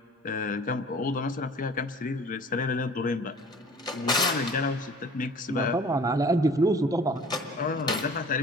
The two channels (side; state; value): both; normal; correlation 0.48